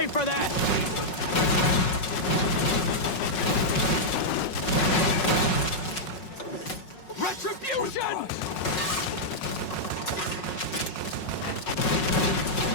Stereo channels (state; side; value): late; right; 5.4 ms